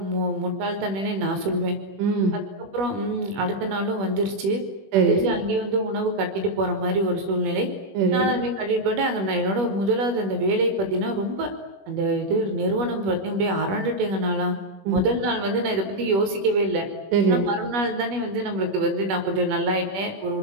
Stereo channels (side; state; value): left; late; 21 ms